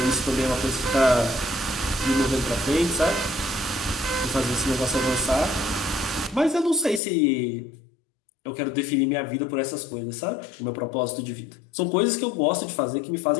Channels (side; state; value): right; drops out; at 7.0 s